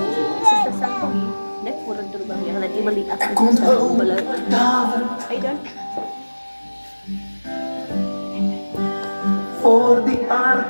Sister Sandy, net voor het terbang yang nanti beli aku komt belum. David Hey dan, voor die ark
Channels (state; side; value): inverted; both; correlation -1.00